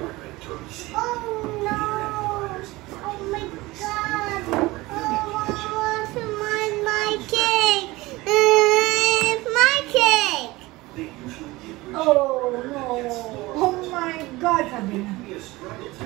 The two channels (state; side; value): quieter; left; 20.5 dB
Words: Oh no! Oh my god! Oh, I want my cake! My cake! Oh no! Oh my God! Sabi na.